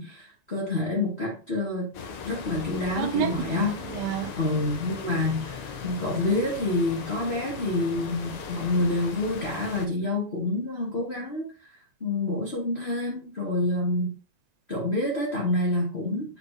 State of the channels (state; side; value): late; left; 1.9 ms